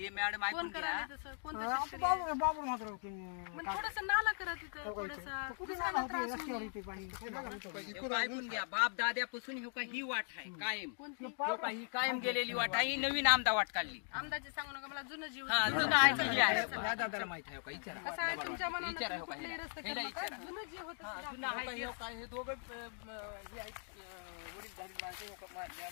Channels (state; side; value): silent; right; 52 dB below the other